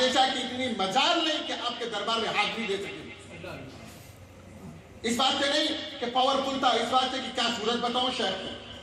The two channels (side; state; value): both; identical; correlation 1.00